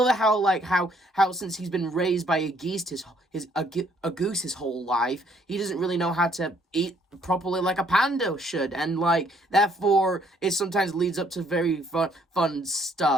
how since he's been raised by a goose his whole life, he doesn't really know how to eat properly like a panda should, and like therefore it sometimes leads up to very fun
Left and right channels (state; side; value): normal; both; correlation 0.65